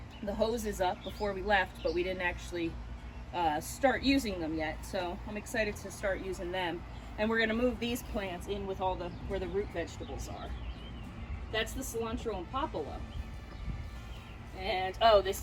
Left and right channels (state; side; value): identical; both; correlation 1.00